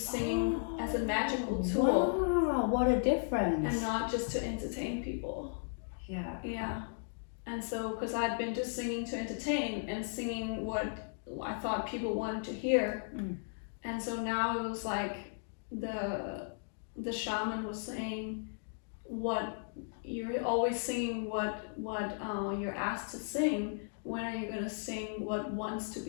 singing as a magical tool. Wow, what a difference! And not just to entertain people. Yeah, and so because I'd been just singing to entertain and singing what I thought people wanted to hear, and so now it was like the shaman was saying, what you're always singing what you're asked to sing. When are you gonna sing what wants to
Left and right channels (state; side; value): silent; right; digital silence